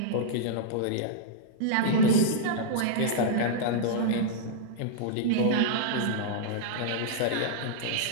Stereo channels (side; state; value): both; different; correlation -0.02